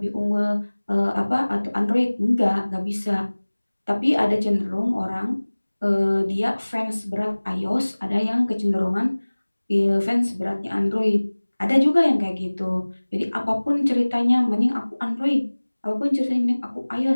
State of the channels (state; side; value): inverted; both; correlation -1.00